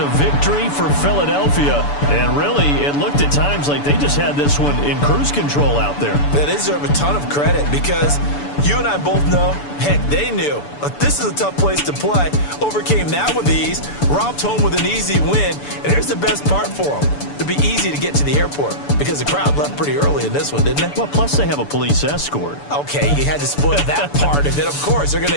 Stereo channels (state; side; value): late; right; 6.9 ms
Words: victory for Philadelphia. And really, it looked at times like they just had this one in cruise control out there. Yeah, they deserve a ton of credit because you and I both know, heck, they knew. But this is a tough place to play. Overcame that with ease, romped home with an easy win. And here's the best part for them. It'd be easy to get to the airport because the crowd left pretty early in this one, didn't they? Well, plus they have a police escort. Okay, you had to spoil that part of it. Of course, they're